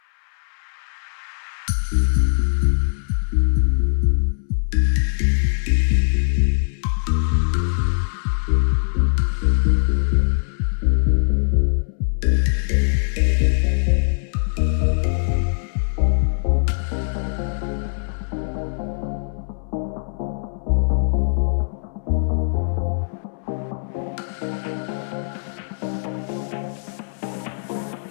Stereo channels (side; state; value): right; silent; 64 dB below the other